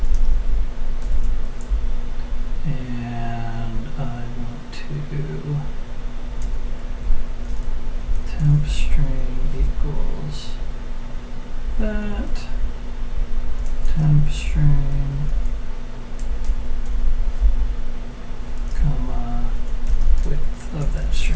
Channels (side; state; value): both; identical; correlation 1.00